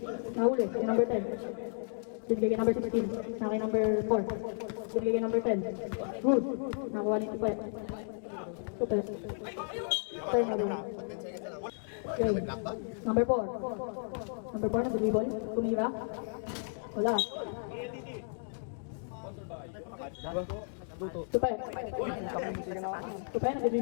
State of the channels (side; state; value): right; silent; digital silence